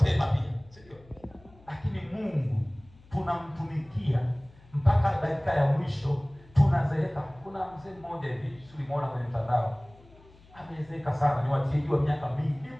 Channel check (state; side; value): noise; left; hum, 25 dB below the sound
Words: pia, si ndio? Lakini Mungu tunamtumikia mpaka dakika ya mwisho, tunazeeka. Kuna mzee mmoja hivi tulimuona kwenye mtandao, amezeeka sana, ni watieji wa miaka mingi,